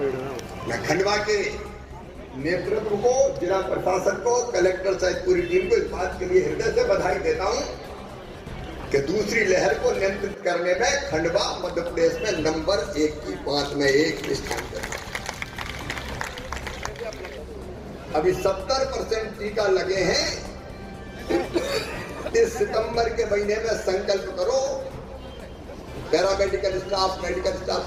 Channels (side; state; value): both; identical; correlation 1.00